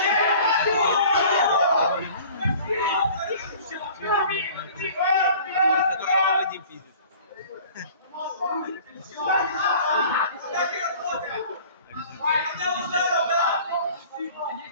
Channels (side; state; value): both; inverted; correlation -0.47